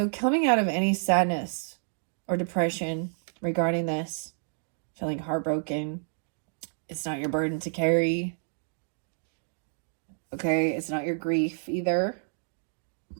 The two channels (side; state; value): left; silent; digital silence